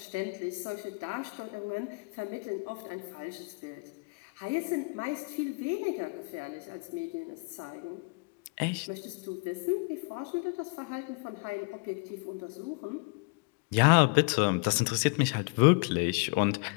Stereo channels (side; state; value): right; quieter; 31.7 dB